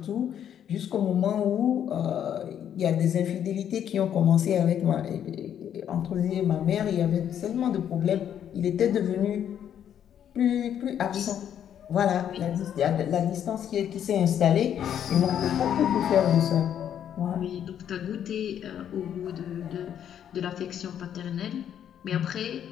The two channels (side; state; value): right; quieter; 9.6 dB